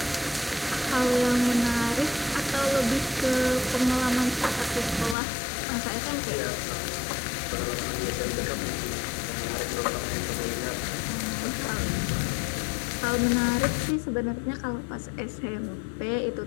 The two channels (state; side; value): drops out; right; at 5.2 s